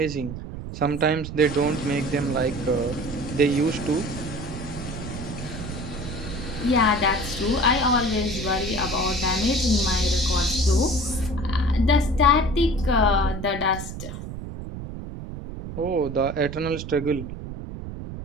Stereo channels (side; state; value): right; noise; rumble, 9 dB below the sound